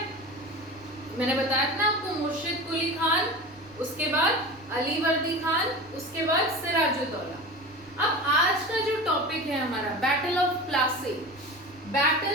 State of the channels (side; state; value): right; noise; rumble, 25 dB below the sound